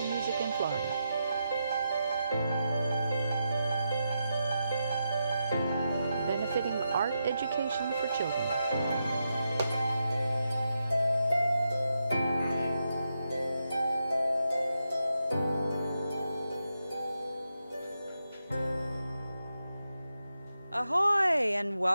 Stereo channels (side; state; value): both; inverted; correlation -0.86